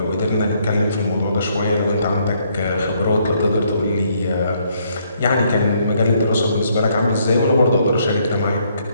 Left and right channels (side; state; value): both; inverted; correlation -0.70